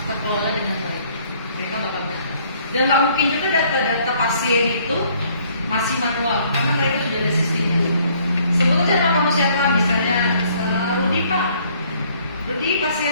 terkelola dengan baik. Mereka bakal benar. Dan nggak mungkin juga data-data pasien itu masih manual karena mereka sudah ada sistemnya. Sebut aja nama kamu siapa, misalnya Rudi Pak. Rudi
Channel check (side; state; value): both; inverted; correlation -0.62